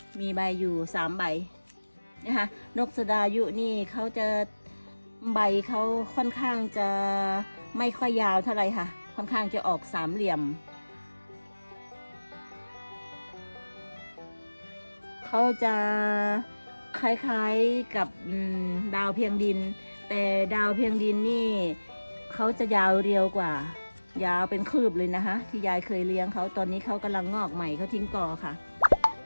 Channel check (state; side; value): inverted; both; correlation -1.00